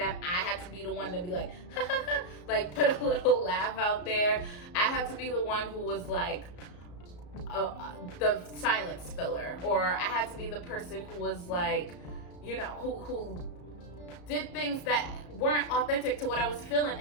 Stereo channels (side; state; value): right; late; 34 ms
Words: I had to be the one to be like, ha ha ha, like put a little laugh out there. I had to be the one who was like the silence filler, or I had to be the person who was like, you know, who did things that weren't authentic to what I was feeling